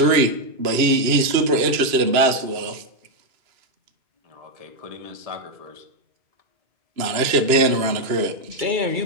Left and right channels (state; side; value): late; left; 2.9 ms